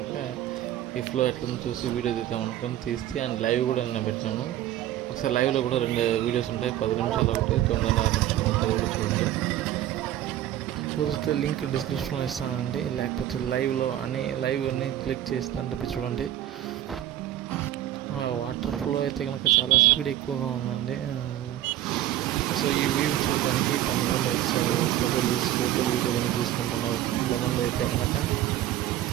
ఈ ఫ్లో ఎట్లా చూసి వీడియో తీద్దాం అనుకొని తీస్తే అండ్ లైవ్ కూడా నేను పెట్టినాను. ఒకసారి లైవ్లో కూడా 2 వీడియోస్ ఉంటాయి, 10 నిమిషాలు ఒకటి, 9:30 నిమిషాలు ఉంటుంది, కూడా చూడండి. చూస్తే లింక్ డిస్క్రిప్షన్లో ఇస్తానండి, లేకపోతే లైవ్ అన్నీ క్లిక్ చేస్తుంటే చూడండి. వాటర్ ఫ్లో అయితే కనుక చాలా స్పీడ్ ఎక్కువగా ఉందండి. సో ఈ వ్యూ చూడడానికి కొంతమంది వచ్చారు, ఫోటోలు వీడియోలు తీసుకుంటున్నారు. కొంతమంది అయితే కనుక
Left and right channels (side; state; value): left; quieter; 12.7 dB